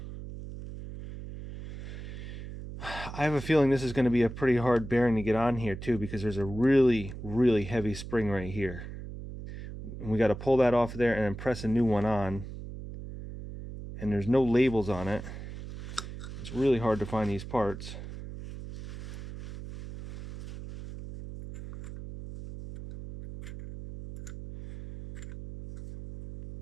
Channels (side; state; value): right; noise; hum, 10 dB below the sound